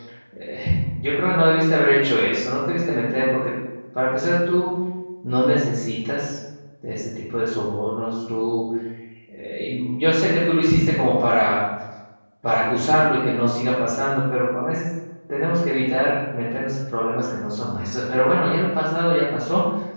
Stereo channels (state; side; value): inverted; both; correlation -1.00